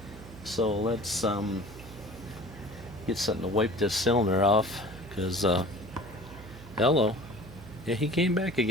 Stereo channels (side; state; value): right; noise; hum, 16 dB below the sound